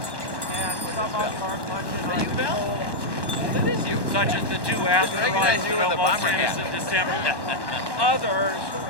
And some of them are much in our control. That is you. Such as the two asteroids that almost hit us in December. Others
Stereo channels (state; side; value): late; right; 1.1 ms